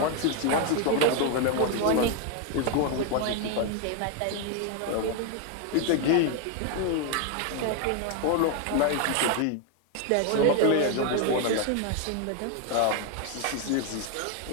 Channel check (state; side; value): different; both; correlation 0.01